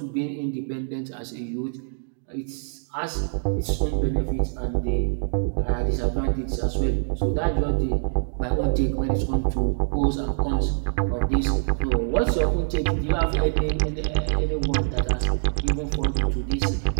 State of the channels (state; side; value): silent; left; digital silence